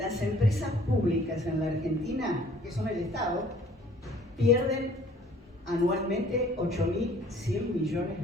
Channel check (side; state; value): both; normal; correlation 0.55